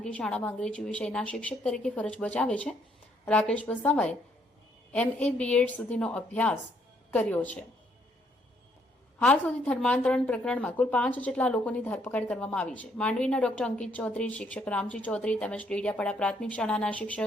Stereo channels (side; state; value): both; normal; correlation 0.70